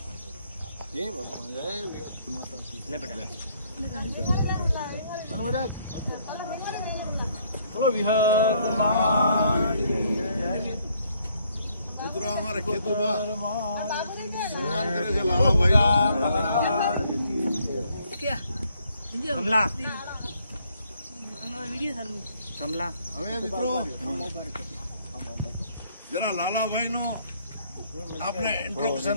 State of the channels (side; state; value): both; inverted; correlation -0.68